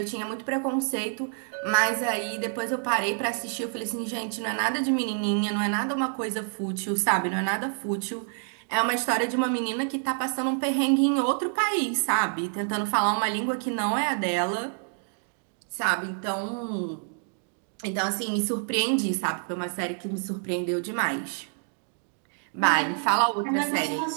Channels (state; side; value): silent; left; 57 dB below the other